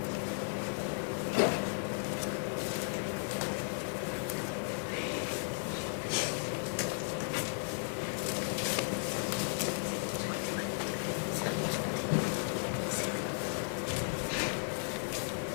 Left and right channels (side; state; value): right; silent; 54 dB below the other